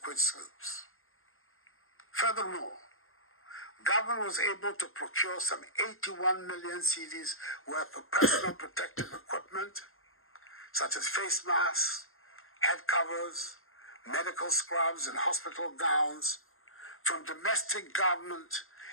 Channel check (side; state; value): right; late; 0.61 ms